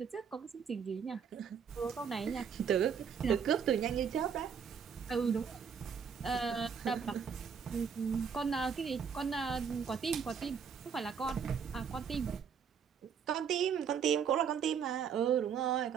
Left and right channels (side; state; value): left; quieter; 6.9 dB